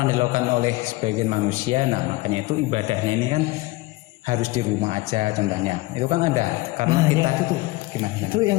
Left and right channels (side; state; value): right; quieter; 20.5 dB